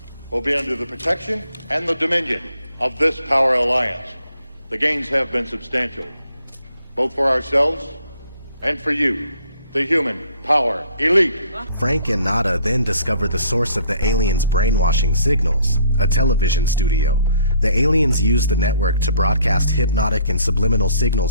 will be under the protection and the dominion of this power alliance. The gains have been substantial, both for ourselves and for you, the human power elite. Frank and Nada then discover the source of the aliens' brainwashing signals, a television studio. The aliens use the network to broadcast hypnotic and subliminal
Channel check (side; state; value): both; inverted; correlation -0.61